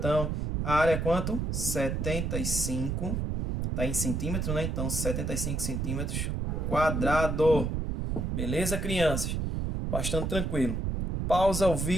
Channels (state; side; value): noise; right; rumble, 1 dB below the sound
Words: a área é quanto? 75. Está em centímetro, né? Então, 75 centímetros quadrado. Beleza, crianças? Bastante tranquilo. Pausa o